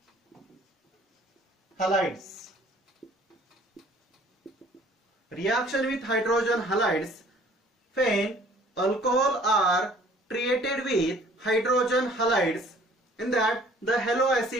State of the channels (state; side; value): normal; both; correlation 0.55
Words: halides. Reaction with hydrogen halides, when alcohol are treated with hydrogen halides, in that the halo